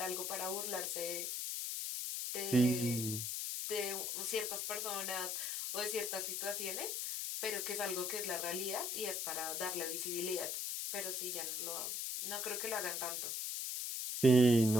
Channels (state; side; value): noise; left; hiss, 2 dB below the sound